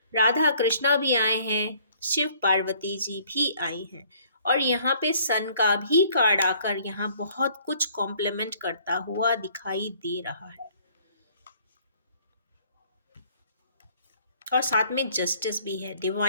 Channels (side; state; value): both; inverted; correlation -0.60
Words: राधा कृष्णा भी आए हैं, शिव पार्वती जी भी आई हैं, और यहाँ पे सन का भी कार्ड आकर यहाँ बहुत कुछ कॉम्प्लीमेंट करता हुआ दिखाई दे रहा है। और साथ में जस्टिस भी है,